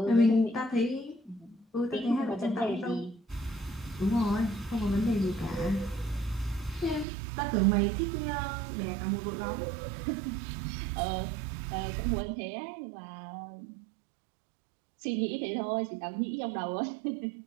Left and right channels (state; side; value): drops out; left; at 7.1 s